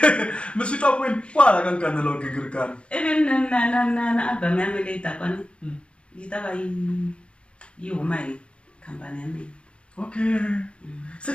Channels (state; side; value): late; right; 0.058 ms